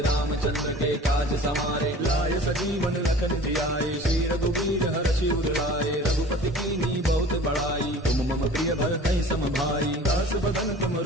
रामचंद्र के काज समारे। लाय सजीवन लखन जियाए श्री रघुवीर हर्षि उर लाए। रघुपति कीन्ही बहुत बड़ाई तुम मम प्रिय भरतहि सम भाई। दास बदन तुम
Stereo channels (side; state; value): both; normal; correlation 0.44